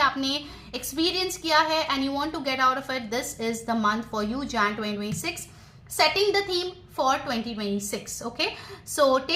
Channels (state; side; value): identical; both; correlation 1.00